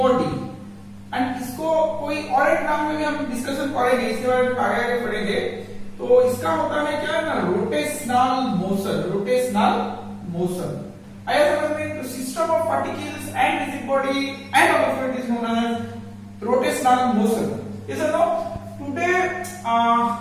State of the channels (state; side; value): identical; both; correlation 1.00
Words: And इसको कोई और एक नाम में भी हम discussion करेंगे, इसके बारे में आगे पढ़ेंगे। तो इसका होता है क्या ना, रोटेशनल मोशन। रोटेशनल मोशन आया समझ में? तो system of particles and rigid body and of it is known as rotational motion. Yes और no? Today we